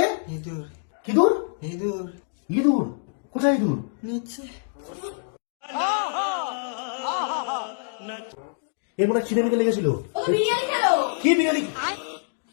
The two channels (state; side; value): silent; right; digital silence